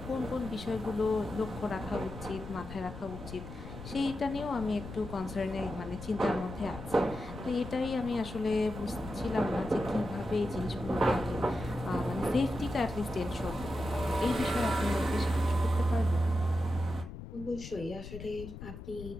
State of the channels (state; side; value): noise; left; rumble, 11 dB below the sound